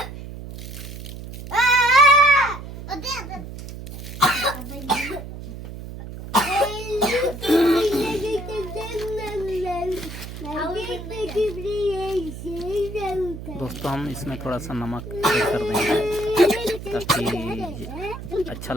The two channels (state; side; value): noise; right; hum, 11 dB below the sound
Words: दोस्तों, हम इसमें थोड़ा सा नमक ऐड कर देंगे ताकि अच्छा